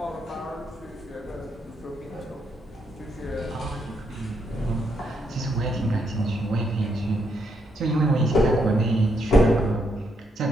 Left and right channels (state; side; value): normal; both; correlation 0.77